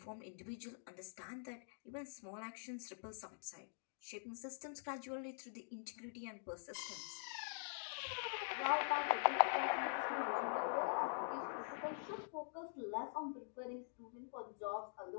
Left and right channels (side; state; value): right; silent; digital silence